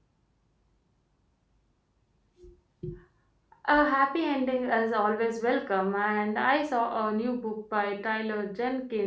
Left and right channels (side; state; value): both; identical; correlation 1.00